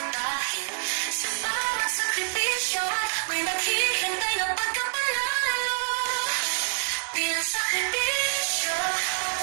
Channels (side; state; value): left; silent; 58 dB below the other